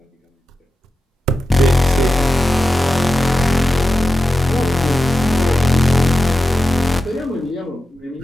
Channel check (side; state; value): both; normal; correlation 0.92